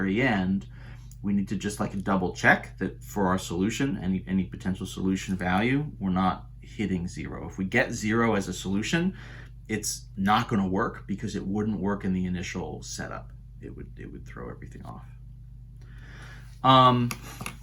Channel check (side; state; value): both; identical; correlation 1.00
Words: end, we need to just like double check that for our solution, any potential solution value, we're not hitting 0. If we get 0 as a solution, it's not going to work because it wouldn't work in the initial setup. It would throw everything off.